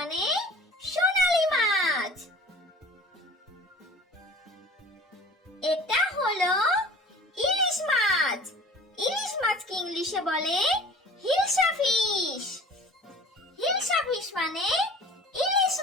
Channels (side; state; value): both; normal; correlation 0.44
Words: সোনালী মাছ। এটা হলো ইলিশ মাছ। ইলিশ মাছকে ইংলিশে বলে হিলসা ফিশ। হিলসা ফিশ মানে ইলিশ